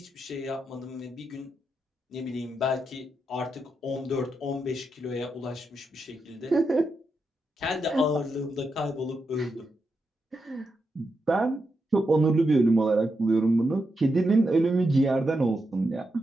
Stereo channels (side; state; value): both; normal; correlation 0.85